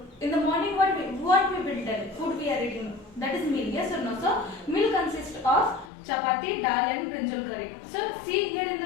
in the morning what we will tell, food we are eating, that is meal, yes or no? So meal consists of chapati, dal and brinjal curry. So see here in the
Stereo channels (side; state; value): right; drops out; at 5.9 s